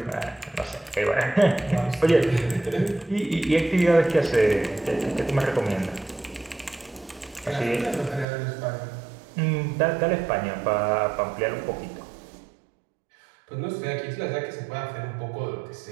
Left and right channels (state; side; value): drops out; left; at 8.2 s